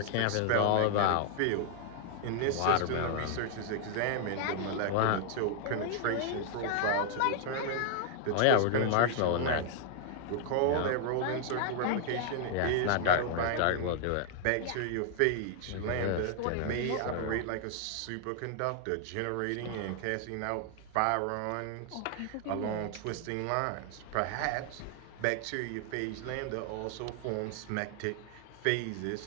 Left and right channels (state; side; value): different; both; correlation 0.00